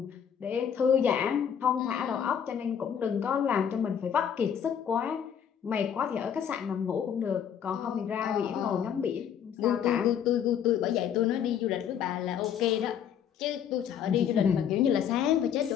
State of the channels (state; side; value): quieter; right; 8.5 dB